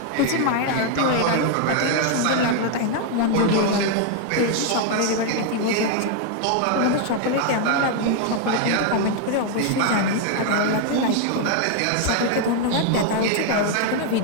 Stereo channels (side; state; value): both; different; correlation 0.00